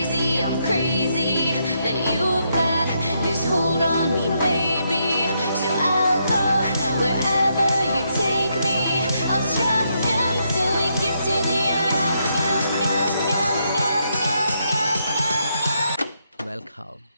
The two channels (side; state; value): both; inverted; correlation -0.78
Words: that you've got this hold on me, baby. So I'll go wherever you take me. I'll strum until we get to the end. Welcome.